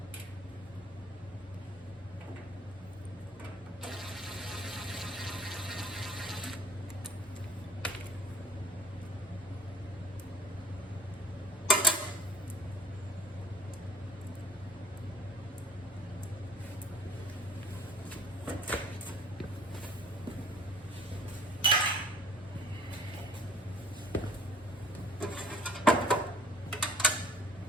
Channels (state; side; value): normal; both; correlation 0.52